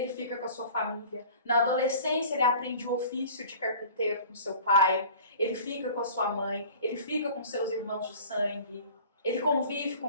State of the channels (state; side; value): inverted; both; correlation -0.44